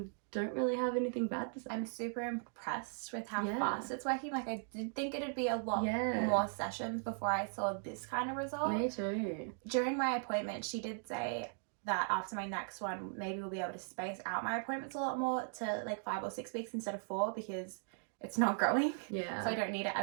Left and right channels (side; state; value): left; silent; 52 dB below the other